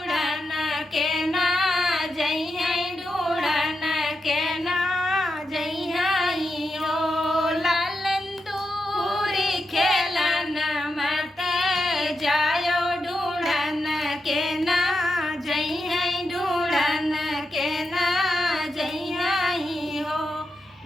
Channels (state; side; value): normal; both; correlation 0.87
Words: के ना जइहे ढूंढन के ना जइहे हो लालन दूरी खेलन मत जायो ढूंढन के ना जइहे ढूंढन के ना जइहे हो